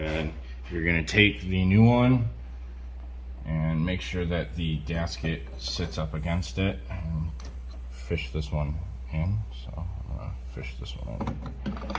you're going to take the new one and make sure that the gasket sits up against it, and fish this one in. So I'm gonna fish this one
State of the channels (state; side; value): identical; both; correlation 1.00